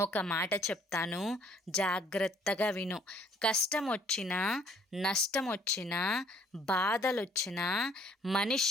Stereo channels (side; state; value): both; normal; correlation 0.60